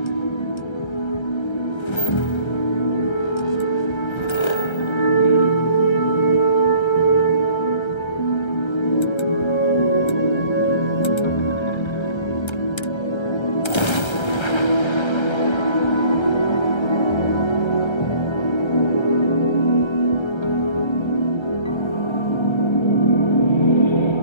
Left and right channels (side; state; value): right; late; 1.3 ms